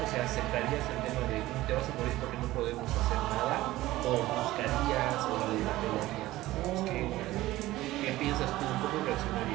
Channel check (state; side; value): quieter; left; 16.8 dB